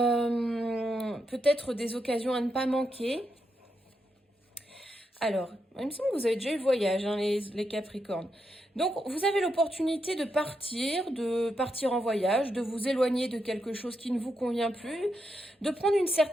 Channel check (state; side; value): normal; both; correlation 0.83